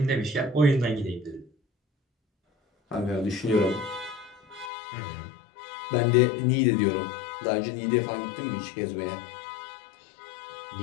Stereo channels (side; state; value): right; drops out; at 4.7 s